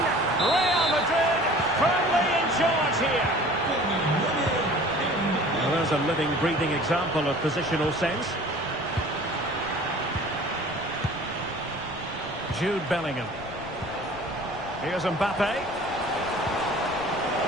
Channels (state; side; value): noise; left; rumble, 19 dB below the sound